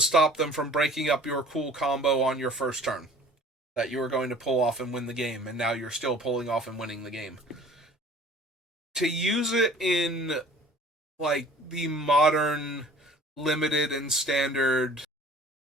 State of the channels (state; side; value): normal; both; correlation 0.49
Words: them from breaking up your cool combo on your first turn that you were going to pull off and win the game, and now you're still pulling off and winning the game. To use it in like the modern limited and standard